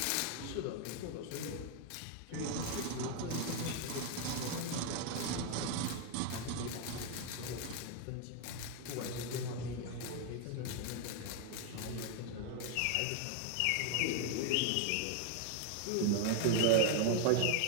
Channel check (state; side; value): different; both; correlation 0.01